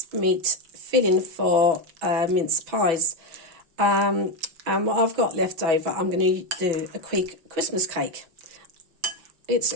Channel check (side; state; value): left; late; 6.0 ms